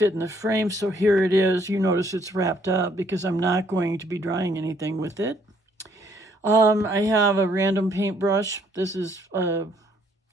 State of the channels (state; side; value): normal; both; correlation 0.66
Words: in the frame, so here it is. You notice it's wrapped up because I'm not going to be drying anything with it. I have a random paintbrush. This is